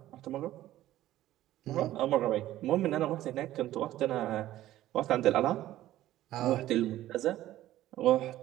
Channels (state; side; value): quieter; left; 14.3 dB